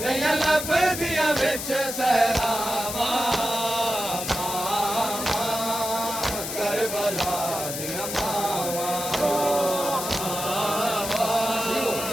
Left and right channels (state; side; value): noise; left; hiss, 5 dB below the sound